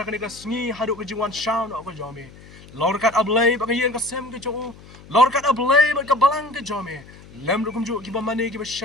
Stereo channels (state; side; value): noise; left; hum, 20 dB below the sound